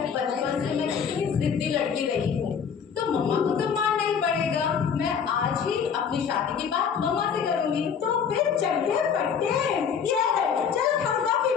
बचपन से मैं कितनी जिद्दी लड़की रही हूँ, तो मम्मा को तो मानना ही पड़ेगा। मैं आज ही अपनी शादी की बात मम्मा से करूंगी। तो फिर चलते पड़ते चलो हम कॉफी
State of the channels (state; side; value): quieter; right; 7.0 dB